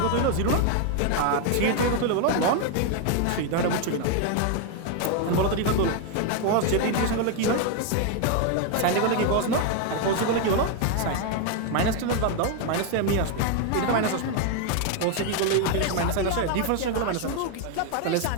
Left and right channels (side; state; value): both; different; correlation 0.01